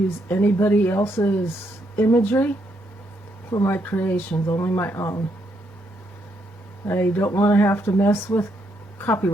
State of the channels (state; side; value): normal; both; correlation 0.76